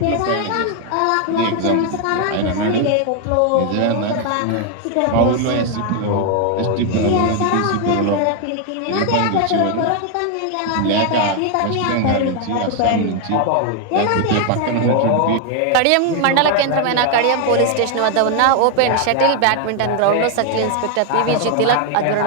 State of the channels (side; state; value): both; different; correlation 0.01